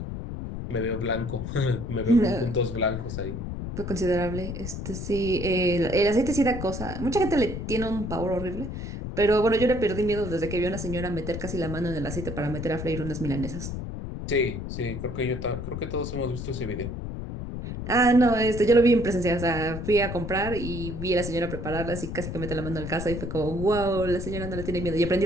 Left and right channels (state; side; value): noise; left; rumble, 6 dB below the sound